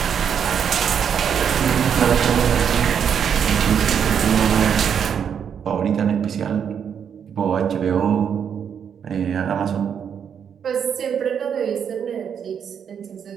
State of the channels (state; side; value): quieter; left; 7.8 dB